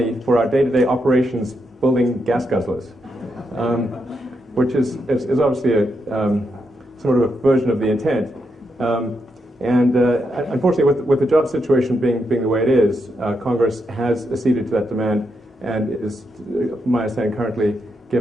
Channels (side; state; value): both; normal; correlation 0.82